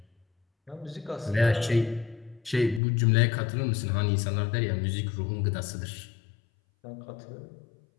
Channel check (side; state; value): right; drops out; at 2.8 s